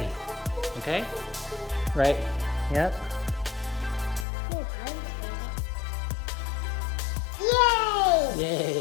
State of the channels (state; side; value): drops out; right; at 4.2 s